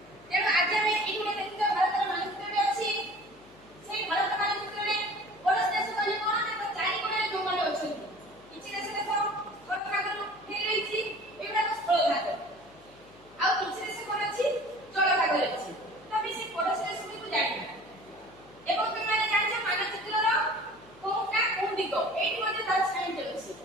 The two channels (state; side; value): noise; left; hum, 26 dB below the sound